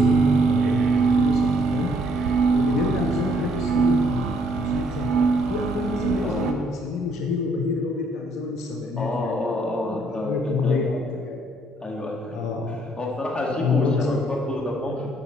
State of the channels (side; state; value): both; normal; correlation 0.67